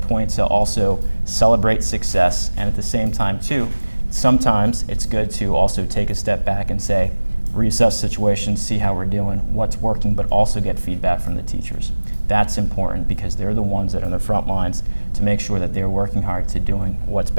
to also celebrate success, and at the same time too, sometimes it's good to also take a step back and say, reassess situations, see how we're doing, what's working, but also get feedback from the teachers. That's important because they're the ones that are on the front lines to make sure that they're working hard to doing what's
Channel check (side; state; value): both; inverted; correlation -1.00